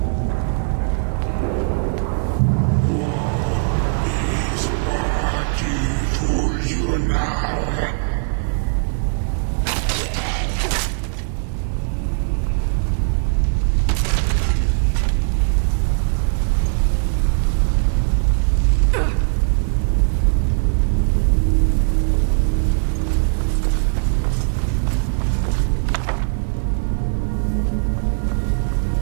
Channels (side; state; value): left; silent; digital silence